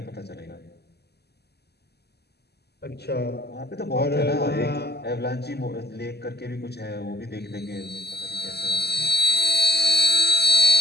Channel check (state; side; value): late; right; 0.47 ms